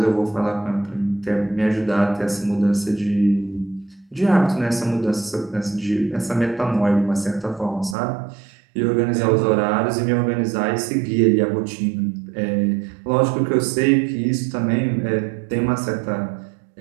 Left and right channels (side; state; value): left; drops out; at 8.0 s